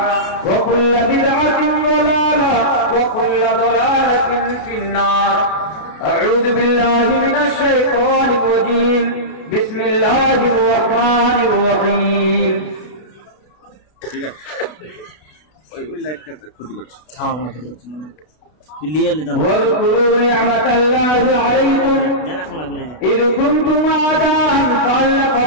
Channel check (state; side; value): late; right; 32 ms